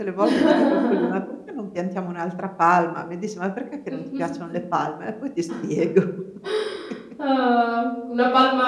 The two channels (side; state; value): both; identical; correlation 1.00